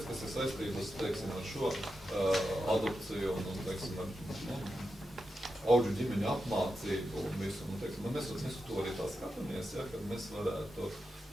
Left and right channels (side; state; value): both; normal; correlation 0.88